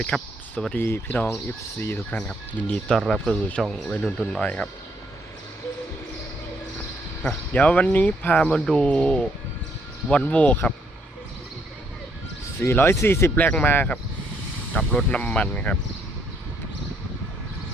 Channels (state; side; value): normal; both; correlation 0.71